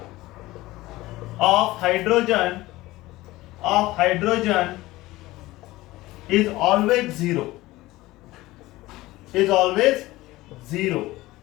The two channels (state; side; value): quieter; right; 18.4 dB